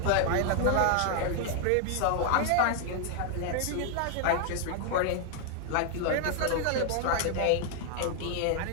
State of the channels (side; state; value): both; different; correlation 0.00